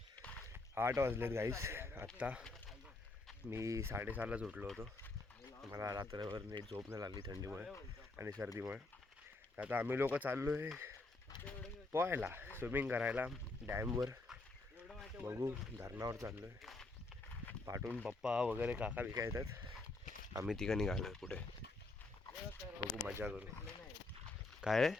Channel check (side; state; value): right; quieter; 3.2 dB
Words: 8 वाजलेत गाईस. आत्ता मी 6:30लाच उठलो होतो. मला रात्रभर नीट झोप नाही लागली थंडीमुळे आणि सर्दीमुळे. आता आम्ही लोक चाललो आहे पोहायला, स्विमिंग करायला डॅमवर. बघू, धरणावर चाललो आहे. पाठून पप्पा वगैरे काका बिका येतात. आम्ही तिघं निघालो आहे पुढे. बघू, मजा करू. काय रे?